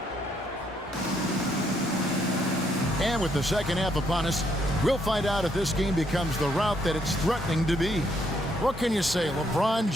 And with the second half upon us, we'll find out if this game becomes the route that it's threatening to be. What can you say, LeBron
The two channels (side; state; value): both; normal; correlation 0.73